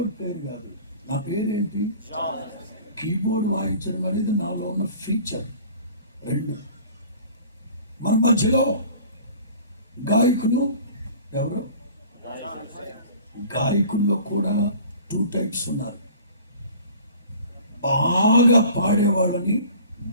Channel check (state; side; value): inverted; both; correlation -0.46